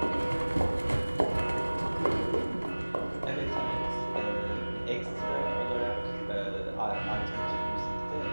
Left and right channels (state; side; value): inverted; both; correlation -1.00